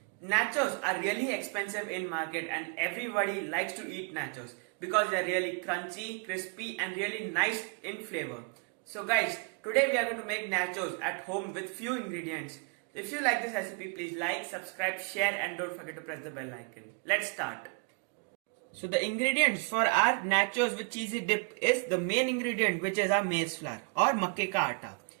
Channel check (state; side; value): quieter; left; 34.8 dB